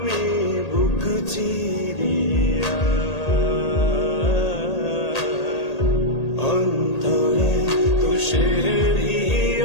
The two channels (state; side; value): late; right; 1.8 ms